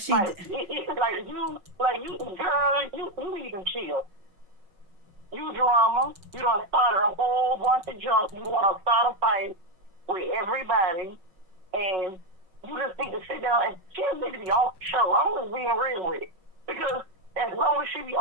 she did. Girl, you need to chill. You drama. You done started a whole bunch of junk. You want to start a fight with everybody, and you just need to sit down and she just need to be off the show. I'm just being real with it. Because as long as she be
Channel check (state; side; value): late; left; 5.4 ms